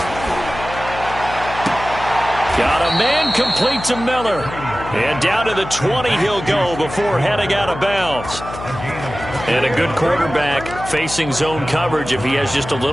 Got a man complete to Miller. And down to the 20 he'll go before heading out of bounds. And a good quarterback facing zone coverage. If he has just a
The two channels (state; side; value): noise; left; hum, 11 dB below the sound